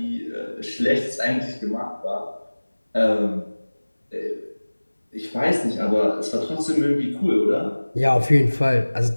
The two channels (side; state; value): both; inverted; correlation -1.00